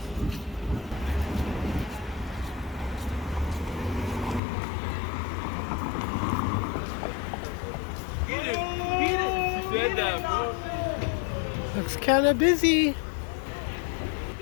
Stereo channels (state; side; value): drops out; right; at 4.4 s